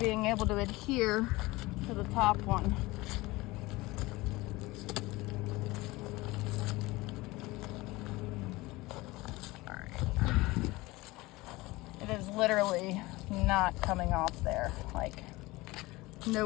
able to adhere to the top one. Alright. It is literally not coming off there. Like, no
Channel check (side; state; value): right; quieter; 21.0 dB